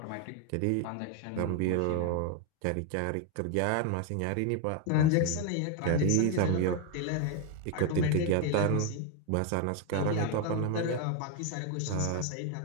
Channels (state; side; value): different; both; correlation 0.01